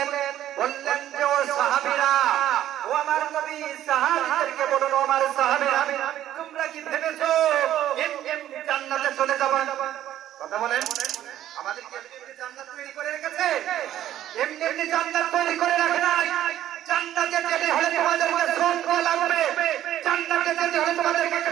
বললেন যে ও সাহাবীরা ও আমার নবী সাহাবীদেরকে বলুন আমার সাহাবীরা তোমরা কি ভেবেছো এমনি জান্নাতে চলে যাবে কথা বলেন আমাদেরকে এমনি জান্নাত তৈরি করে রেখেছে এমনি জান্নাত তৈরি করে রাখে নাই জান্নাতে যেতে হলে তোমাদেরকে শ্রম করা লাগবে জান্নাতে যেতে হলে তোমাদেরকে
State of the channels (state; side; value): quieter; left; 12.3 dB